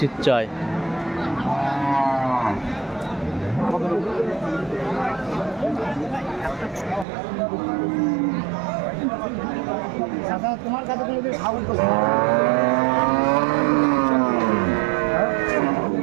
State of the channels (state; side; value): drops out; left; at 7.1 s